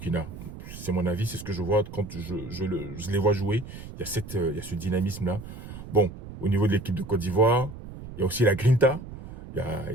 C'est mon avis, c'est ce que je vois quand je les vois jouer. Il y a ce dynamisme-là. Bon, au niveau de l'équipe de Côte d'Ivoire, il y a aussi la grinta. Il y a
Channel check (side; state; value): right; noise; rumble, 12 dB below the sound